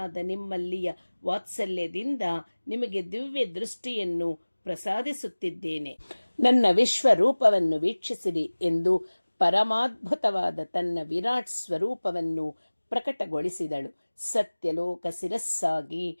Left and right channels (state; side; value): inverted; both; correlation -1.00